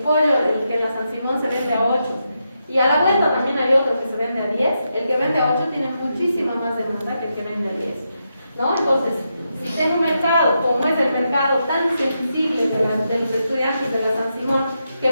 el que en la San Simón se vende a 8, y a la vuelta también hay otro que se vende a 10, el que vende a 8 tiene muchísima más demanda que el que vende a 10, ¿no? Entonces, si en un mercado, como es el mercado tan sensible de los estudiantes de la San Simón, que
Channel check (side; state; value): both; inverted; correlation -0.85